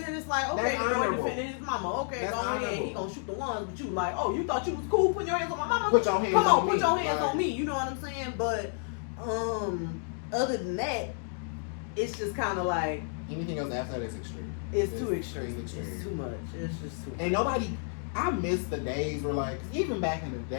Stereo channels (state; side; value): silent; right; 57 dB below the other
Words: it's like, okay, the boy defending his mama. Okay, go ahead. He going to shoot the ones, but you like, oh, you thought you was cool putting your hands on my mama? Put your hands on me. Come on, put your hands on me. You know what I'm saying? But, other than that, it's just kind of like, anything else after that is extreme. It's too extreme. It's too much. It's just too much. And nobody, I miss the days where, like, even back in the